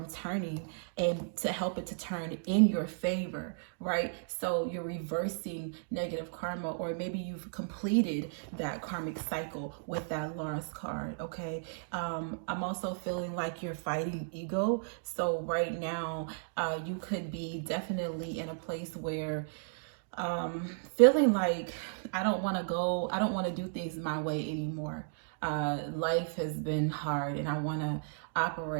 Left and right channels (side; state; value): left; silent; digital silence